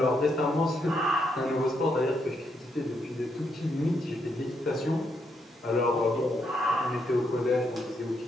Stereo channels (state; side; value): normal; both; correlation 0.78